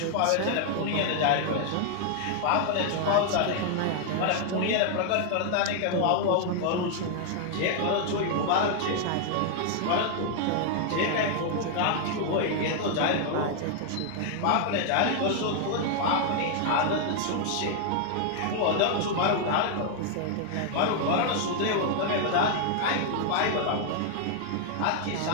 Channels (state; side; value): different; both; correlation 0.00